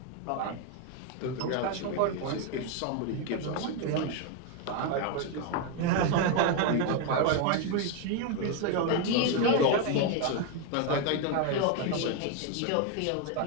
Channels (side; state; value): both; different; correlation 0.01